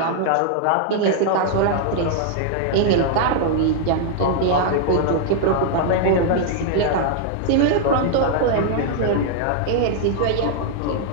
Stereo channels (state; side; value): different; both; correlation -0.01